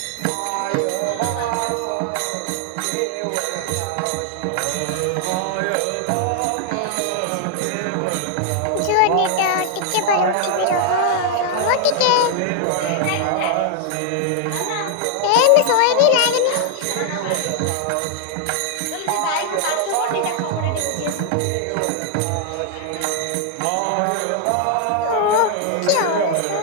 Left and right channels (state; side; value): different; both; correlation 0.00